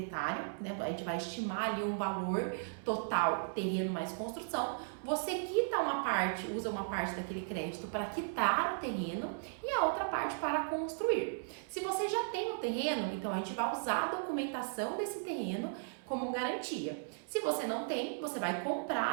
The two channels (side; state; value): left; silent; 54 dB below the other